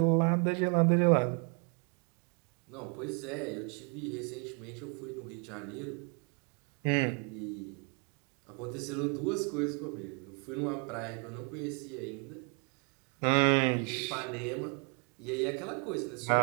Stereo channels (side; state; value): left; quieter; 36.6 dB